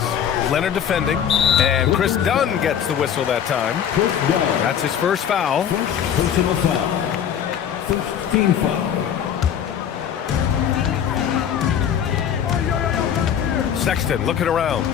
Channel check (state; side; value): quieter; right; 8.9 dB